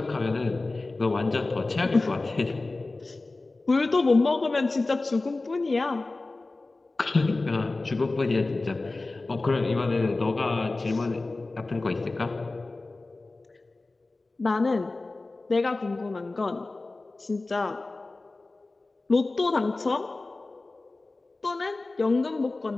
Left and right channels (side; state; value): right; quieter; 3.3 dB